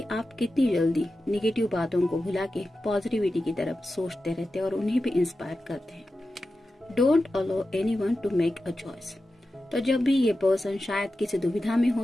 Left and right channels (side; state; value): both; normal; correlation 0.92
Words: आप कितनी जल्दी निगेटिव बातों को भुला के पॉजिटिविटी की तरफ सोचते रहते हैं और उन्हें भी इंस्पायर करते हैं। Don't allow anyone to make a choice. तो जब भी ये पर्सन शायद किसी दुविधा में